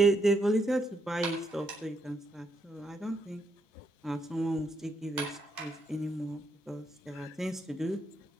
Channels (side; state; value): both; normal; correlation 0.77